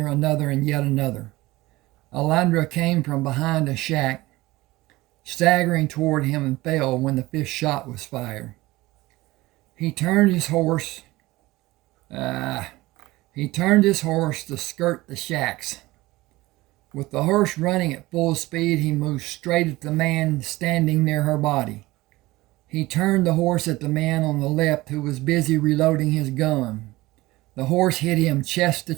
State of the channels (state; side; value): quieter; left; 19.4 dB